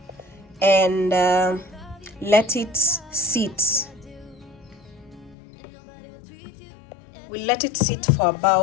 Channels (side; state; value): right; drops out; at 5.4 s